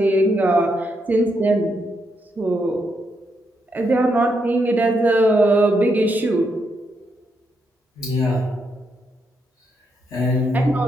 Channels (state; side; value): normal; both; correlation 0.80